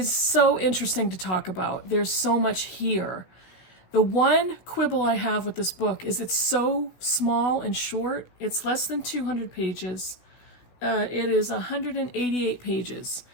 so interesting to talk about. There's so much here. The one quibble I have with this book is it's so small and short. It's less than 200 pages. It is 188 pages.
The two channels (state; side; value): late; right; 16 ms